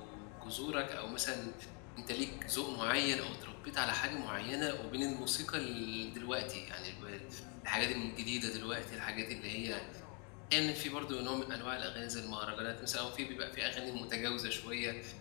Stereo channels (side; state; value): right; quieter; 36.5 dB